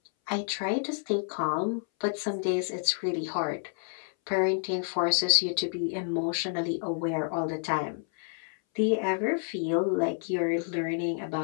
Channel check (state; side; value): silent; right; 58 dB below the other